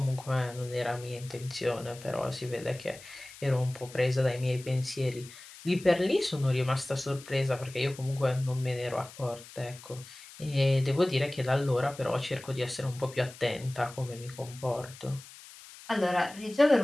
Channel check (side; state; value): left; noise; hiss, 18 dB below the sound